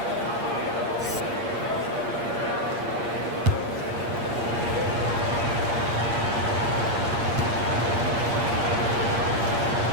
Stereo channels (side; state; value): left; late; 8.6 ms